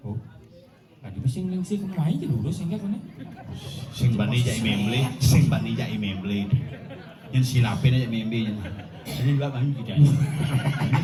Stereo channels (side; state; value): both; identical; correlation 1.00